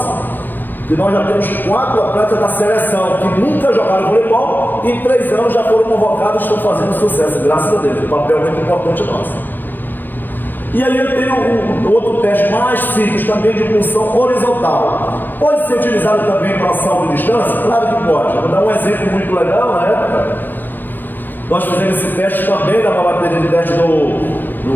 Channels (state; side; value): late; right; 0.092 ms